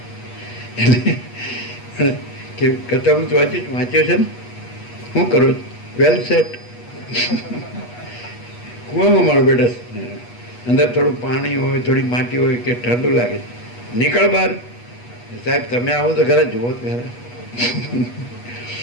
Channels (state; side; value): late; right; 8.3 ms